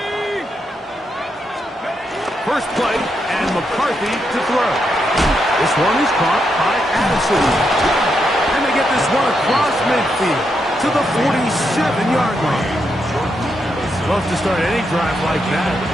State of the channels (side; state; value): both; normal; correlation 0.82